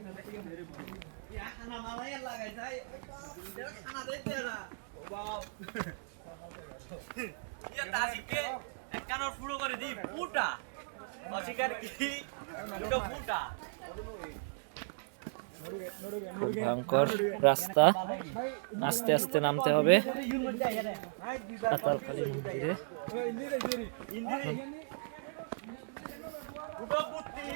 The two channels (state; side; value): silent; left; digital silence